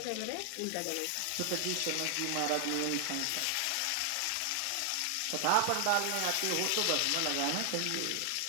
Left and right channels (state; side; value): different; both; correlation 0.00